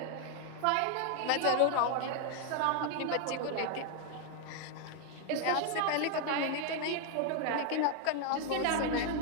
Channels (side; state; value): both; different; correlation 0.00